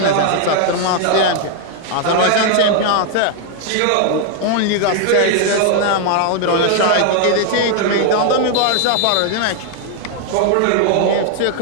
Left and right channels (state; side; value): different; both; correlation 0.00